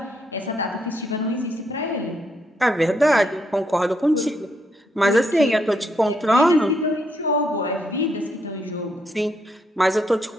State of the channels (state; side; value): normal; both; correlation 0.76